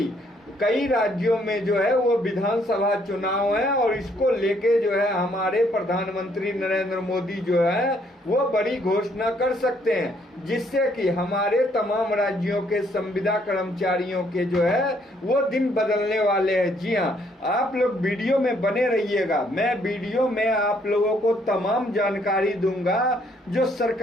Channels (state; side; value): normal; both; correlation 0.68